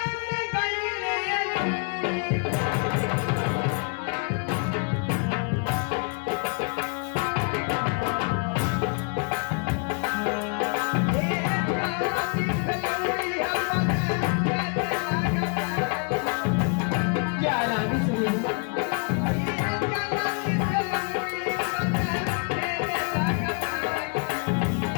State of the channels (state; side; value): quieter; right; 38.9 dB